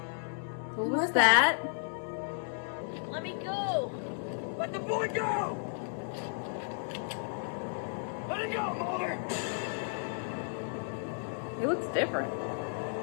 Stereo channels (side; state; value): right; silent; 55 dB below the other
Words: Who was that? Let me go. Let the boy go! Let it go, Mulder! He looks different.